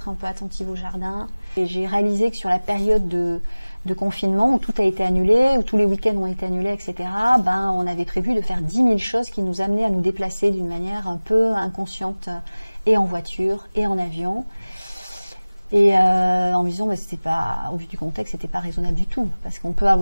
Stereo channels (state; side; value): inverted; both; correlation -1.00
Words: un peu attentive au jardin. Et j'ai réalisé que sur la période de confinement où tout a été annulé, où tous les week-ends ont été annulés, etc., on avait prévu de faire 10 000 choses qui nous amenaient à nous déplacer d'une manière un peu inconsciente, et en voiture et en avion. Et en me disant, bah, c'était pas, au vu du contexte, c'était pas raisonnable du tout. Parce qu'on peut